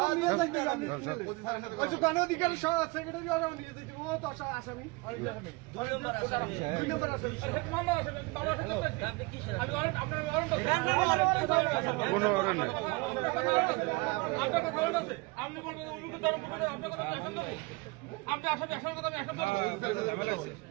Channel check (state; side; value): quieter; left; 25.8 dB